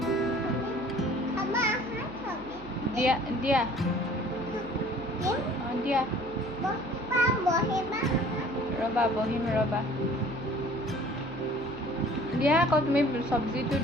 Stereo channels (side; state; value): right; noise; hum, 18 dB below the sound